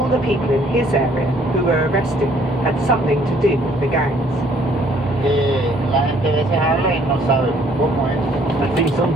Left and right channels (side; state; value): both; normal; correlation 0.62